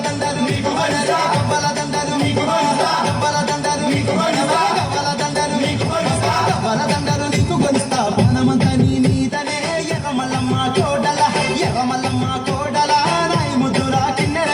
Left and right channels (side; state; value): both; identical; correlation 1.00